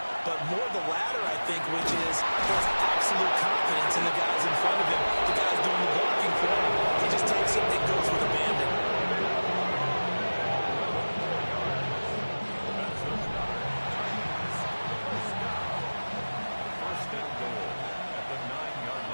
But more the latter, I think, which is there's absolute confidence in the guys in front of him, the guys doing the blocking for him. He just takes it and goes with abandon.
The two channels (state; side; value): inverted; both; correlation -1.00